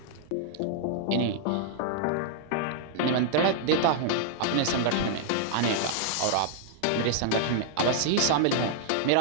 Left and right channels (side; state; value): both; different; correlation -0.01